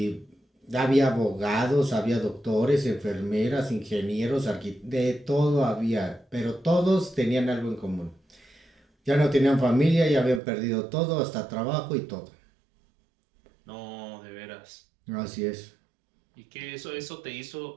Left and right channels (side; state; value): left; drops out; at 10.4 s